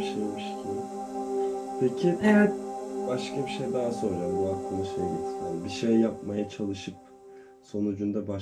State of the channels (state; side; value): identical; both; correlation 1.00